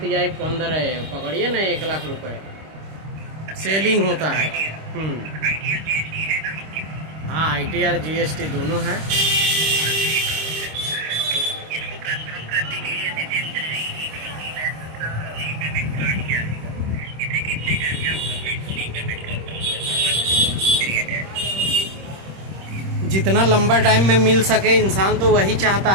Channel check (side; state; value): left; late; 26 ms